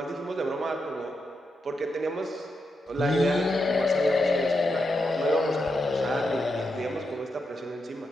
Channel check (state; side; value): normal; both; correlation 0.85